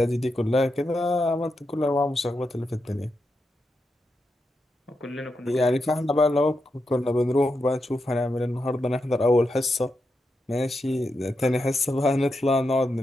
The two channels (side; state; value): both; normal; correlation 0.86